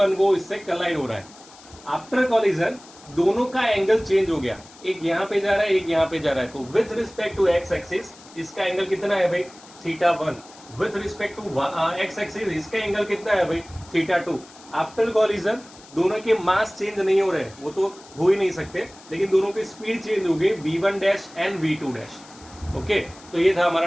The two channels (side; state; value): left; noise; hiss, 22 dB below the sound